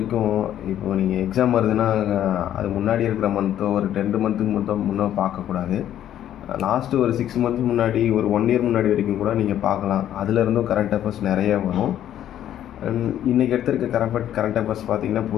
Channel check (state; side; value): quieter; right; 11.2 dB